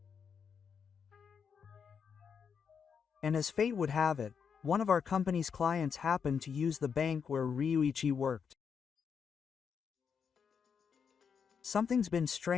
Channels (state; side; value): quieter; right; 6.7 dB